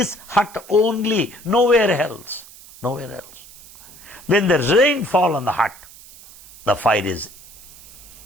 hut only, nowhere else. Nowhere else. When there's rainfall on the hut, the fire is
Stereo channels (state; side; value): noise; right; hiss, 20 dB below the sound